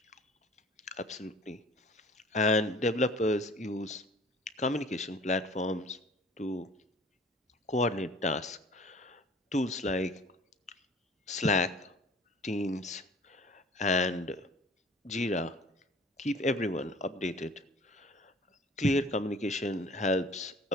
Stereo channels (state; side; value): normal; both; correlation 0.49